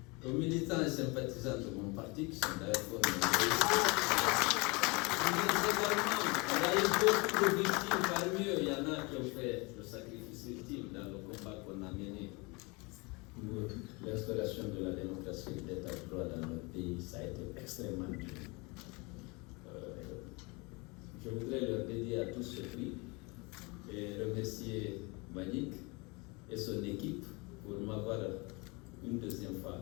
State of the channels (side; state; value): right; quieter; 27.6 dB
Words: aux militants et sympathisants de mon parti qui sont d'ailleurs il y a eu beaucoup de victimes, parmi eux, il y en a qui ont fait le sacrifice ultime dans le combat qu'on a mené pour l'installation de la démocratie et de l'état de droit dans notre pays. Ça a été extrêmement dur. Je voudrais leur dédier à tous ce prix et remercier Manik et son équipe pour m'avoir une deuxième fois